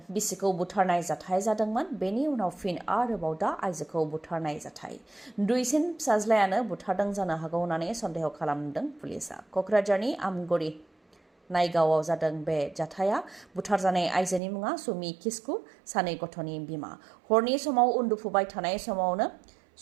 बिसिखौ बुथारनाय जाथाय जादोंमोन बेनि उनाव फिन आरोबाव दा आइजोखौ बुथारनाय जाथाय दुइसिन फिसाज्लायानो बुथारदों जानो हागौ होननानै सन्देह खालामदों पुलिसआ कक्राझारनि आमगुरि नायगावआव जादों बे जाथाया बुथारजानाय आइजोनि मुङा सुमि किस्कु सानै गथ'नि बिमा हरनि समाव उन्दुफुबाय थानाय समावनो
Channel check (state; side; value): drops out; left; at 14.4 s